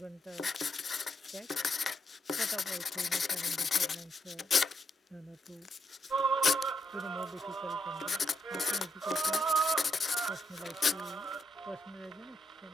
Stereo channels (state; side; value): normal; both; correlation 0.80